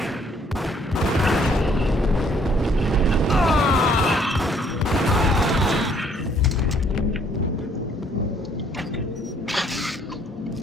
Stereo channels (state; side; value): normal; both; correlation 0.63